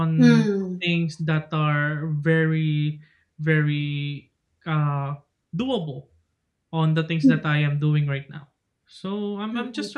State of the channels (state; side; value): identical; both; correlation 1.00